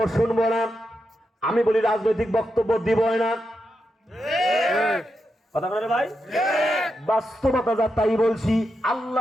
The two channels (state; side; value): normal; both; correlation 0.86